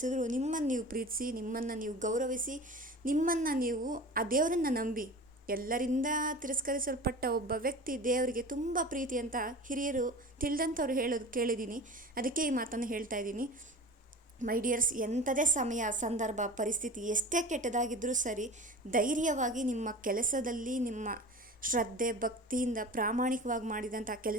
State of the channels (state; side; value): normal; both; correlation 0.35